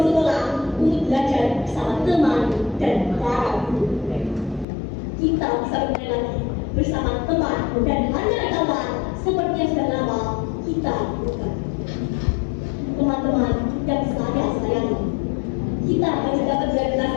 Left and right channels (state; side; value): drops out; right; at 4.7 s